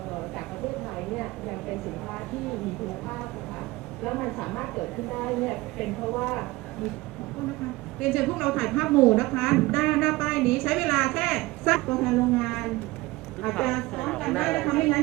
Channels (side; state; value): left; quieter; 20.6 dB